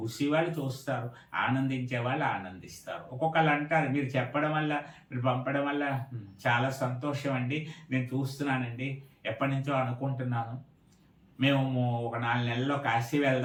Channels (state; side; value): identical; both; correlation 1.00